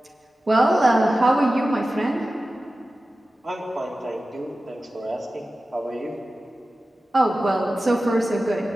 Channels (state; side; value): normal; both; correlation 0.95